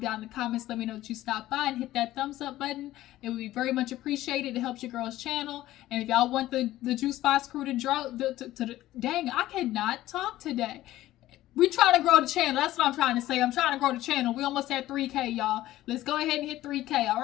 down in the comments. Let me know that you stopped by and hit that thumbs up button. It would be very much appreciated. It helps your girl's channel. And if y'all want the Juice Box crew to draw, dang, I cannot talk today. We trying to grow the channel. That's what I'm trying to say. I'm trying to grow the channel. We almost at 3K, y'all. Let's go ahead and hit 3K, all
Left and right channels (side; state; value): right; quieter; 15.1 dB